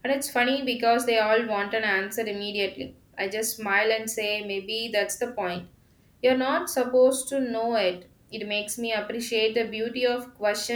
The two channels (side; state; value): both; identical; correlation 1.00